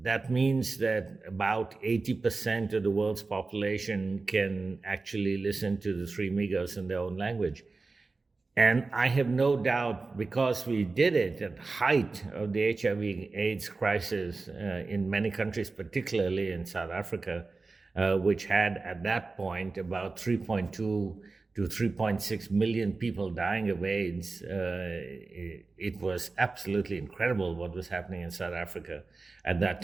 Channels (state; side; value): quieter; left; 3.8 dB